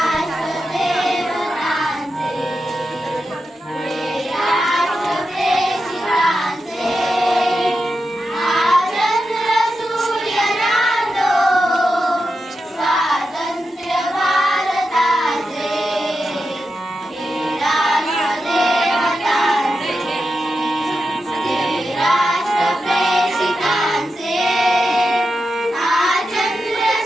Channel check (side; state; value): both; normal; correlation 0.89